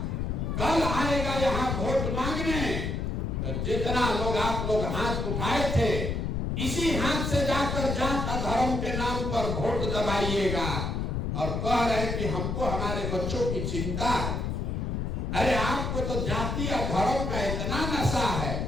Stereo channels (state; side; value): noise; left; rumble, 1 dB below the sound